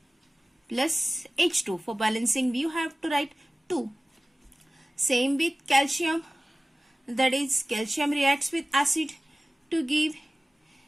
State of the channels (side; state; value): both; normal; correlation 0.97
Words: plus H2. For balancing, you have to write 2. Same with calcium. That is, calcium reacts with acid to give